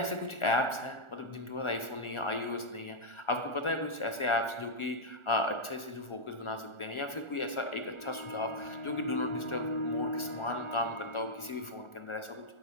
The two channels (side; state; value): right; late; 1.4 ms